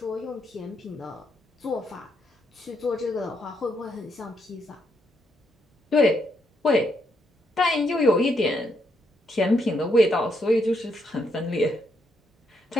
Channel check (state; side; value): normal; both; correlation 0.77